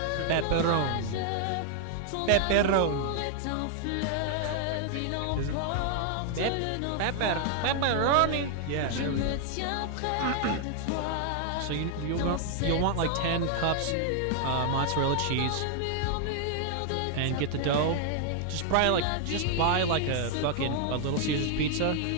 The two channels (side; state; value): both; different; correlation 0.00